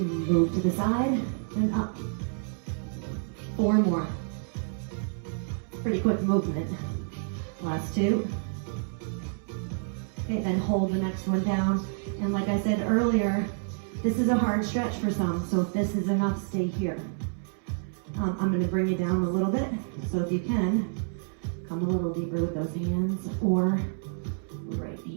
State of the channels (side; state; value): left; silent; 59 dB below the other